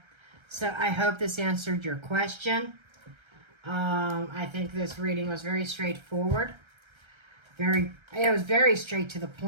So I hope this answered your question. I think this reading was very straightforward. It was very straight to the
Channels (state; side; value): late; left; 1.3 ms